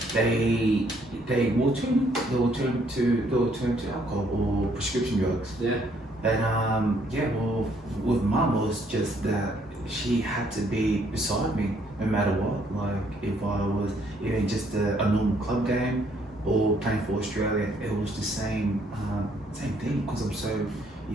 they will turn to alcohol or prescription drugs. Yeah. But well, with Mum, it was just that she had to be beside me no matter what. Like, if I was even just a normal club game or playing for Australia, it was the same thing, because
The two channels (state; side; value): normal; both; correlation 0.67